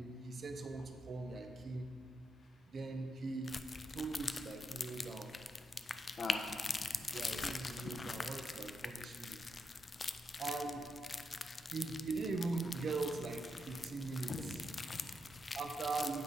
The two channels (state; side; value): normal; both; correlation 0.83